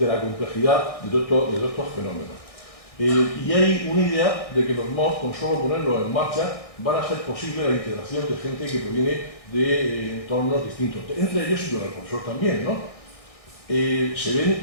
la complejidad de todos estos fenómenos. Y hay una idea de que los MOS, con solo ponerlos en marcha, van a ser posible la integración de gente que proviene de entornos distintos. Entre ellos, y con el profesor también, ¿no? Se ven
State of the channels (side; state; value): right; late; 1.6 ms